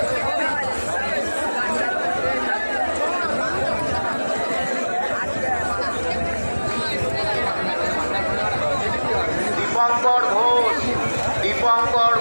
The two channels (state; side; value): inverted; both; correlation -1.00